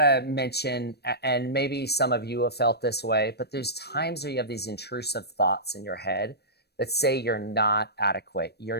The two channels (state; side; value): late; right; 0.47 ms